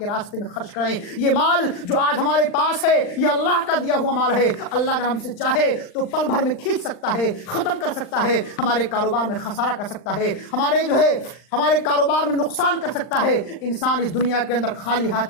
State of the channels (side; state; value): right; late; 40 ms